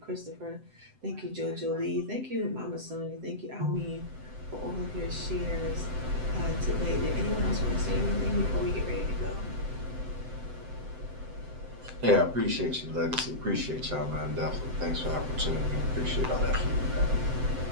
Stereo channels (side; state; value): left; late; 7.8 ms